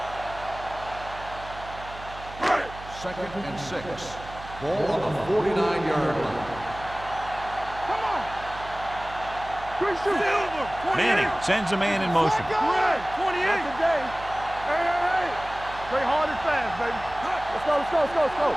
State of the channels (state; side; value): noise; right; hum, 15 dB below the sound